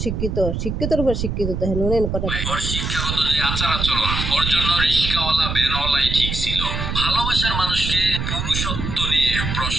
শিক্ষিত, শিক্ষিতর উপর শিক্ষিত। দেখেন উনি কথা শিক্ষাগত যে আচার আচরণ, ওর জন্য রিস্কাওয়ালা ভ্যানওয়ালাই ঠিক ছিল। ভালোবাসার মানুষকে পুরুষত্ব নিয়ে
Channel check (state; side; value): noise; right; rumble, 3 dB below the sound